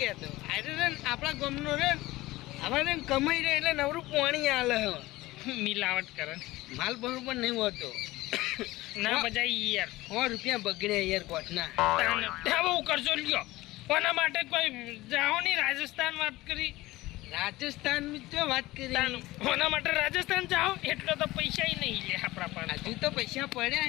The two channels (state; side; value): quieter; right; 18.7 dB